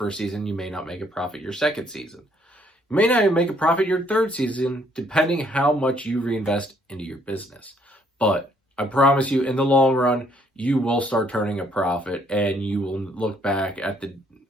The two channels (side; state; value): both; normal; correlation 0.66